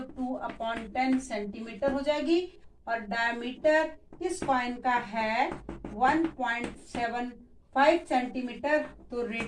2/10 सेंटीमीटर हो जाएगी और डायमीटर इस कॉइन का है 1.75 सेंटीमीटर, तो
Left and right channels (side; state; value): both; identical; correlation 1.00